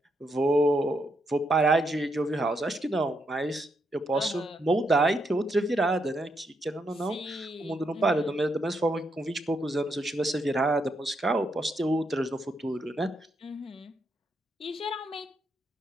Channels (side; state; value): both; normal; correlation 0.79